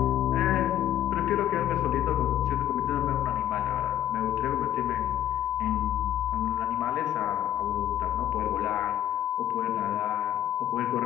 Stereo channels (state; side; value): quieter; right; 11.5 dB